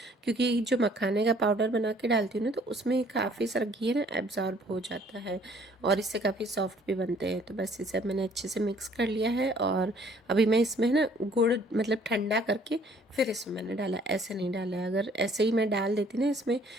क्योंकि जो मखाने का पाउडर बना के डालती हूँ ना तो उसमें काफ़ी सारा घी ना एब्जॉर्ब हो जाता है और इससे काफ़ी सॉफ्ट भी बनते हैं। तो बस इसे मैंने अच्छे से मिक्स कर लिया है और अभी मैं इसमें ना गुड़ मतलब ठंडा करके फिर इसमें मैंने डाला, ऐसे नहीं डाला है। अगर ऐसे ही मैं डाल देती ना इसमें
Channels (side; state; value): both; normal; correlation 0.59